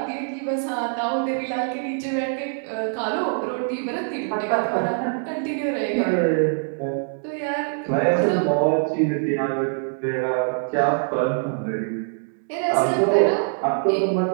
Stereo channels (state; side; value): silent; left; digital silence